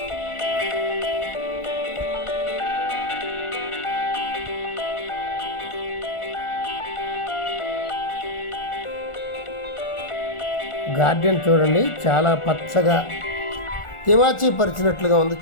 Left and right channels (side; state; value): right; late; 1.4 ms